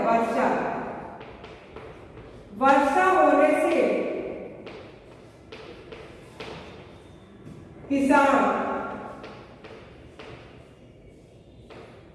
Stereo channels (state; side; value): identical; both; correlation 1.00